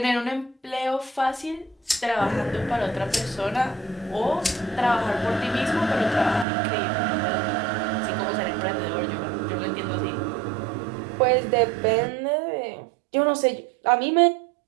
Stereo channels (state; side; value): drops out; left; at 6.5 s